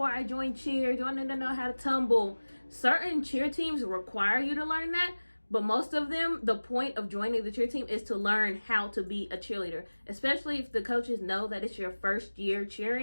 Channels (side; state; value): both; inverted; correlation -1.00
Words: I join cheer? Do I need to know how to tumble? Certain cheer teams require you to learn that. But most of them, the point of joining the cheer team is to learn how to be a cheerleader. Especially if the coaches know that it's your first year